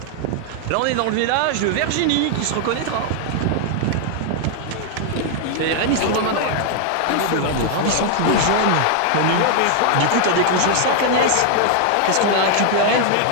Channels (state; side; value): different; both; correlation 0.00